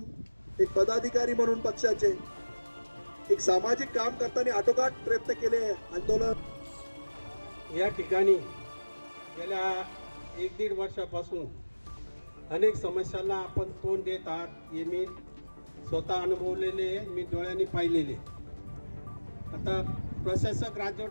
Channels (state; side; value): inverted; both; correlation -1.00